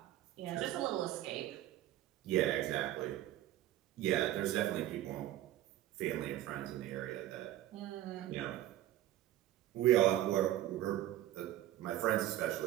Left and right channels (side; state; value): left; quieter; 13.8 dB